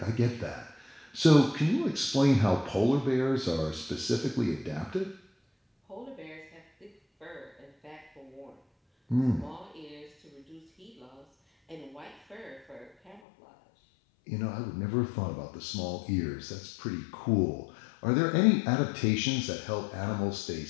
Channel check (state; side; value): drops out; right; at 13.2 s